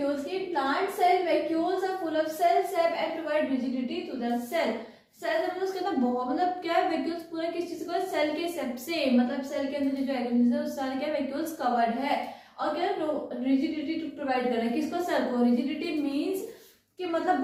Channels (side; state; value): both; identical; correlation 1.00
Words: की। Plant cell vacuoles are full of cell sap and provide rigidity to the cell. Cell मतलब उसके अंदर बहुत, मतलब क्या है, वैक्यूल्स पूरा किस चीज को, सेल के सेप से, मतलब सेल के अंदर जो ऑर्गेनिज्म है उस सारे क्या वैक्यूल्स कवर्ड है। और क्या रिजिडिटी टू प्रोवाइड कर रहा है किसको, सेल को। रिजिडिटी मींस कि मतलब